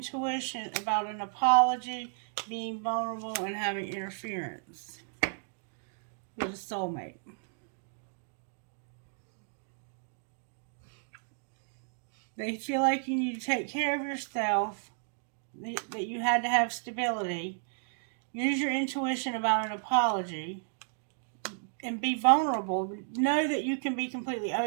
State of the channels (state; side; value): silent; left; digital silence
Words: about an apology, being vulnerable, and having interference with a soulmate. They feel like you need to take care of yourself, that you had to have stability. Use your intuition about an apology and be vulnerable. Know that you can be completely